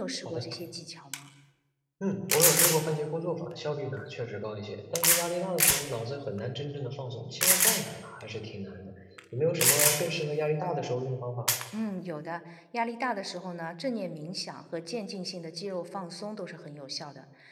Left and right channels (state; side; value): identical; both; correlation 1.00